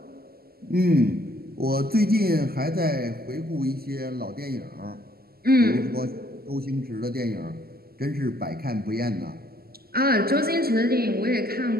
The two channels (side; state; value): left; late; 0.45 ms